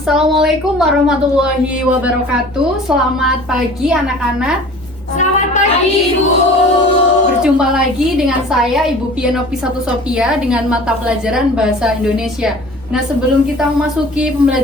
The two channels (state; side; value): normal; both; correlation 0.44